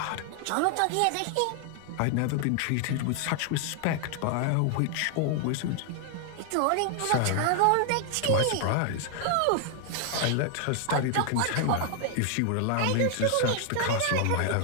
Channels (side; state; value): both; different; correlation 0.00